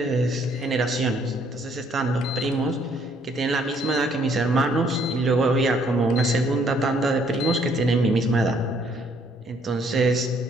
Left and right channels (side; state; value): both; normal; correlation 0.65